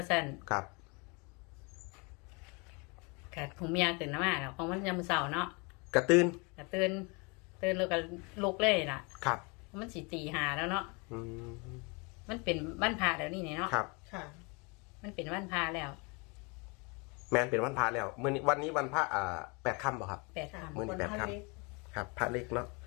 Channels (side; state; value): right; quieter; 30.4 dB